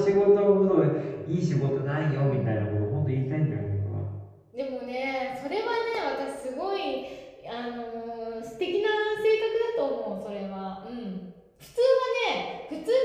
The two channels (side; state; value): both; identical; correlation 1.00